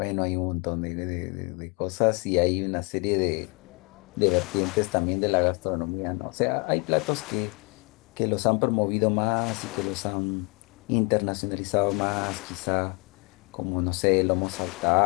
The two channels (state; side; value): quieter; right; 32.3 dB